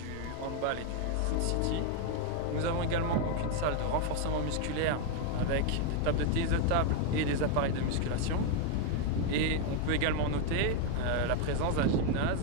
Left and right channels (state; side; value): different; both; correlation 0.01